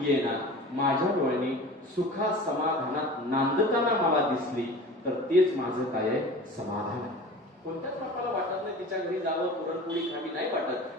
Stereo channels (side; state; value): both; normal; correlation 0.38